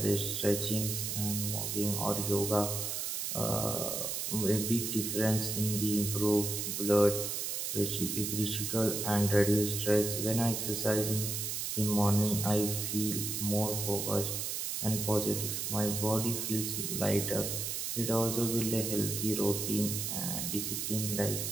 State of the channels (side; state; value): right; noise; hiss, 2 dB below the sound